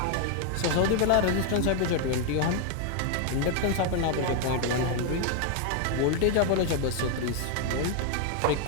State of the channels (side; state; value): both; different; correlation 0.01